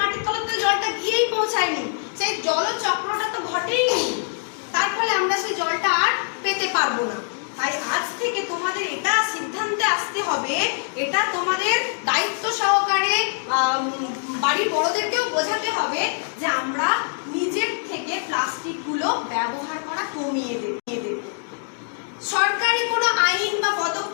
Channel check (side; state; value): right; silent; 63 dB below the other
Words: মাটির তলাতে জলটা গিয়েই পৌঁছায়নি, সেই জলচক্রটা তো ঘটেইনি। তার ফলে আমরা সেই জলটা আর পেতে পারবো না। তাই আজ থেকে তোমাদের এটা সিদ্ধান্তে আসতে হবে, এটা তোমাদের দায়িত্ব সহকারে বাড়ির বড়দেরকেও বোঝাতে হবে যে আমরা নিজের থেকে প্লাস্টিক গুলো ব্যবহার করা কমিয়ে দেব। সরকারি কোনো আইন বা